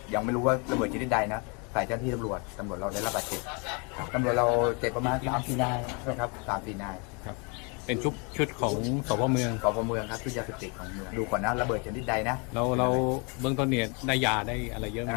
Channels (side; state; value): right; quieter; 32.7 dB